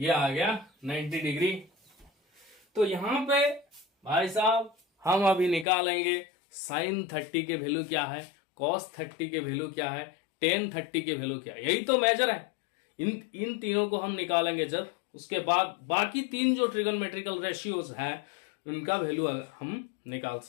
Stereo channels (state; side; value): drops out; right; at 5.7 s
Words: आ गया 90 डिग्री। तो यहां पे भाई साहब हम अभी निकालेंगे साइन 30 के वैल्यू क्या है, कॉस 30 के वैल्यू क्या है, टेन 30 के वैल्यू क्या है। यही तो मेजर है। इन तीनों को हम निकालेंगे जब, उसके बाद बाकी तीन जो ट्रिगोनोमेट्रिकल रेशियोज हैं उनका वैल्यू हम निकाल